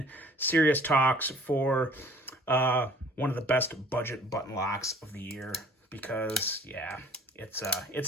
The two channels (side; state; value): both; normal; correlation 0.52